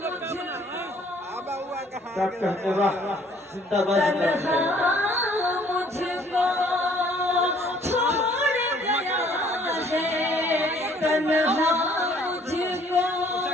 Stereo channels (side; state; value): both; normal; correlation 0.59